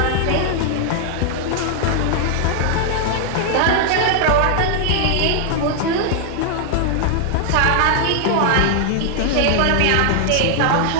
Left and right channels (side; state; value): both; different; correlation 0.00